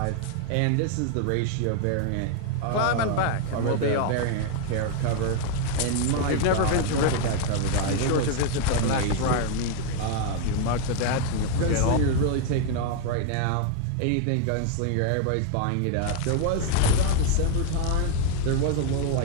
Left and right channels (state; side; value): different; both; correlation 0.00